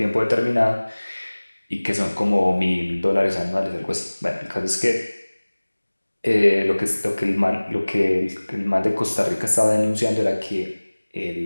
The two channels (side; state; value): both; inverted; correlation -1.00